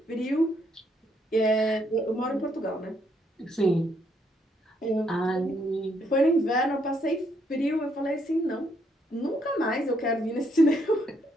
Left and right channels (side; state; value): both; normal; correlation 0.73